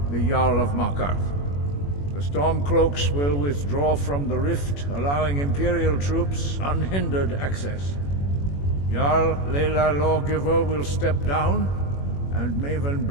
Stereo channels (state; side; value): late; right; 21 ms